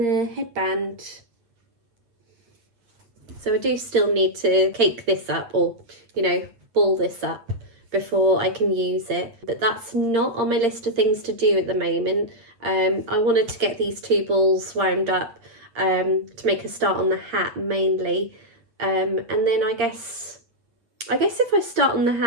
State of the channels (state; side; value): late; left; 8.4 ms